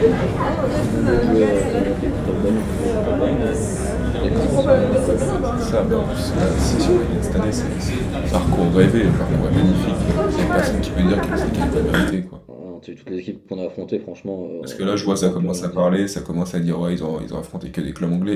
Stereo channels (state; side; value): identical; both; correlation 1.00